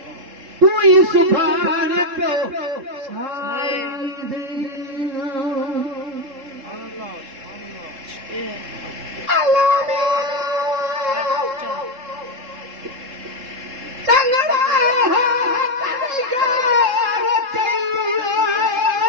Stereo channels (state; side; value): late; left; 3.7 ms